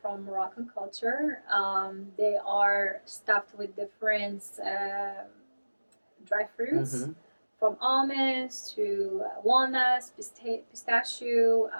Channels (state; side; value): inverted; both; correlation -1.00